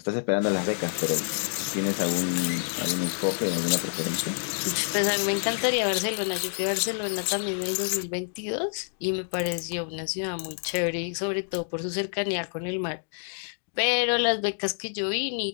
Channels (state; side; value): silent; right; digital silence